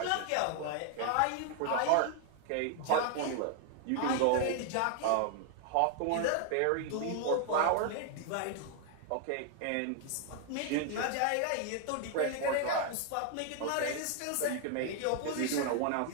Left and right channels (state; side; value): different; both; correlation 0.00